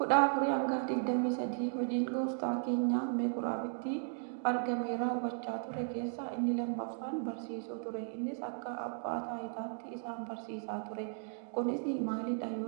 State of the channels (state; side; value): silent; left; digital silence